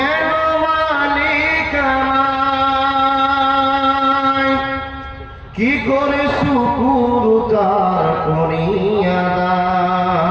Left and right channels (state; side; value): identical; both; correlation 1.00